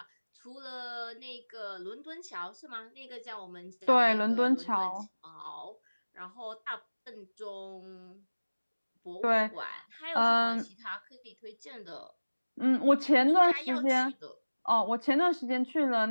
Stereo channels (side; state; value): both; inverted; correlation -1.00